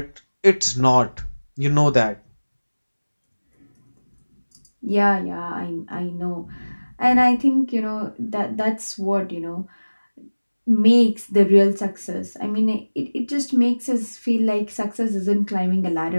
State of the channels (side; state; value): both; inverted; correlation -1.00